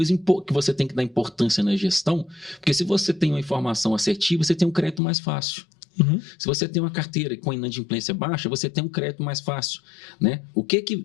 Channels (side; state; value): right; drops out; at 5.0 s